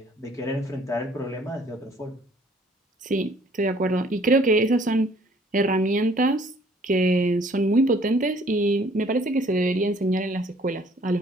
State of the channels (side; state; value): both; normal; correlation 0.59